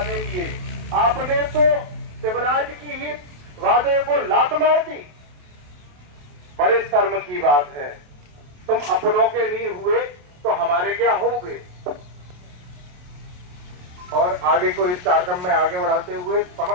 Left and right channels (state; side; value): late; left; 28 ms